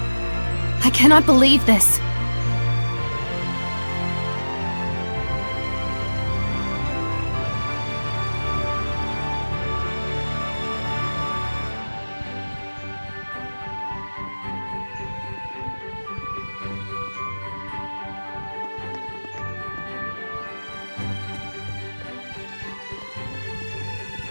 I cannot believe this.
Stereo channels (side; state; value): both; inverted; correlation -1.00